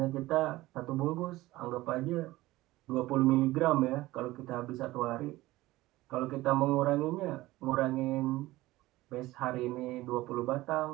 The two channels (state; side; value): quieter; left; 17.9 dB